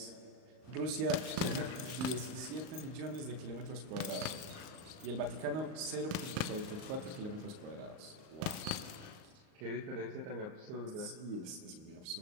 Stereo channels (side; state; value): left; late; 38 ms